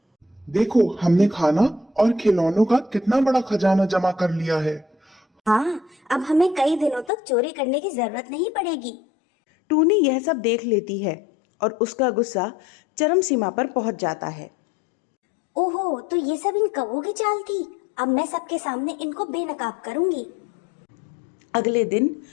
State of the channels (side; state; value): right; drops out; at 7.1 s